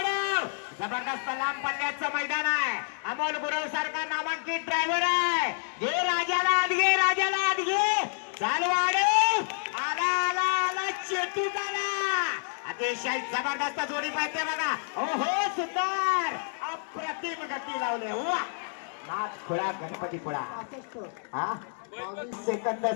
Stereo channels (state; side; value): silent; right; digital silence